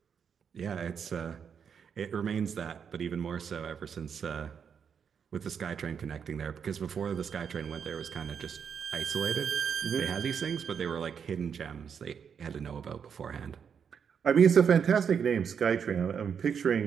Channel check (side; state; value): left; quieter; 7.1 dB